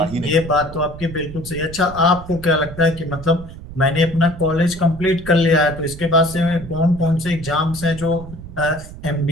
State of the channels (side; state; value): right; noise; rumble, 14 dB below the sound